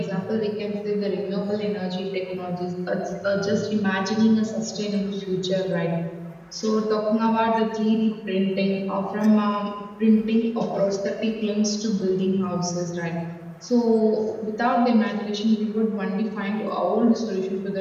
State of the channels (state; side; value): identical; both; correlation 1.00